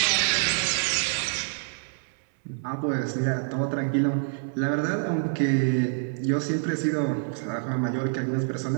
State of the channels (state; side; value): silent; left; 60 dB below the other